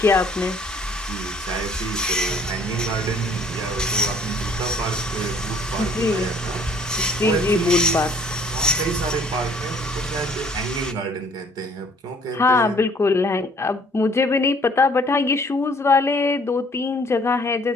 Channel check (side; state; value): both; normal; correlation 0.59